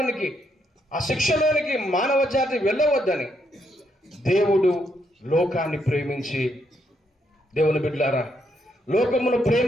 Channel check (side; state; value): both; normal; correlation 0.76